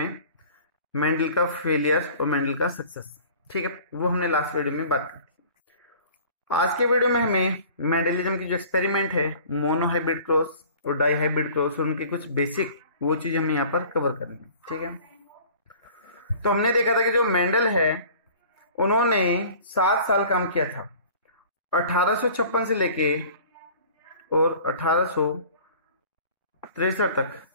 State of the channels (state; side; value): inverted; both; correlation -0.47